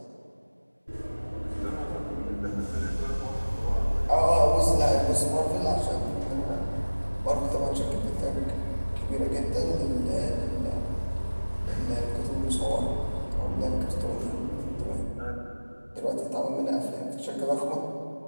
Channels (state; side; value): inverted; both; correlation -1.00